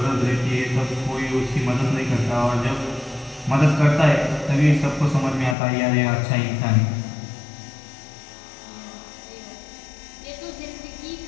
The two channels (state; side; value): drops out; right; at 5.6 s